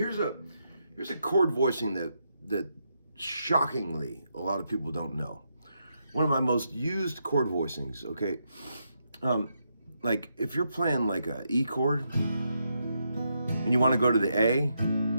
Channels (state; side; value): inverted; both; correlation -0.81